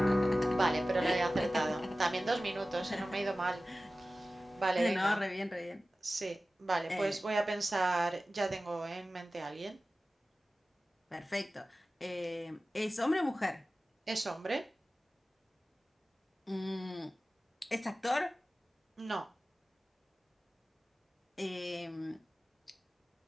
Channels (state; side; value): normal; both; correlation 0.96